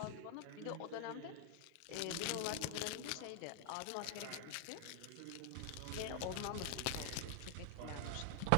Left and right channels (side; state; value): both; different; correlation 0.00